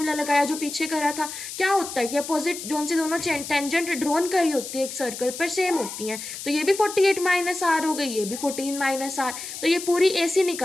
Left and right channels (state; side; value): noise; left; hiss, 9 dB below the sound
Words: लगाया जो पीछे करा था, क्या होता है कि अपोजिट जोन से दोनों टेंजेंट ड्रॉन करी होती है एक सर्कल पर सेम होती हैं, तो ये भी 48 माइनस R -r हो गई, ये भी 14 - r। तो ये पूरी AC